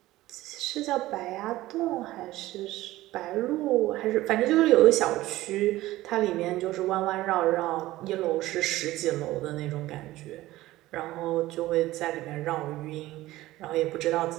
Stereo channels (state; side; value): quieter; left; 16.8 dB